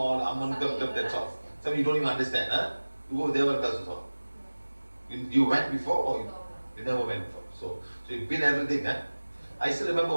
Amantam, that's all. Some you don't even understand, huh? You go Devaram also. You went before or you never went before. So you've been everything, huh? I still remember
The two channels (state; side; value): inverted; both; correlation -1.00